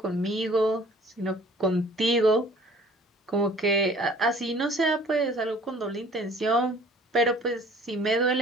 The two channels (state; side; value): normal; both; correlation 0.52